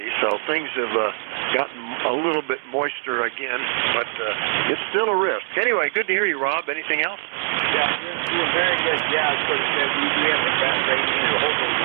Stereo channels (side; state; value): left; silent; 62 dB below the other